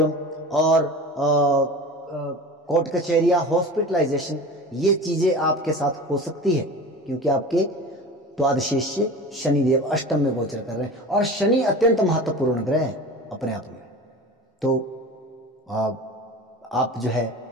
और कोर्ट कचहरिया, हॉस्पिटलाइजेशन, ये चीजें आपके साथ हो सकती है, क्योंकि आपके द्वादशेश से शनिदेव अष्टम में गोचर कर रहे हैं। और शनि अत्यंत महत्वपूर्ण ग्रह है अपने आप में। तो आप जो है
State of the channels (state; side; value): normal; both; correlation 0.35